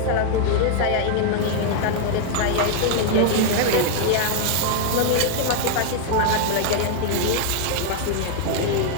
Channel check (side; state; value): both; different; correlation 0.00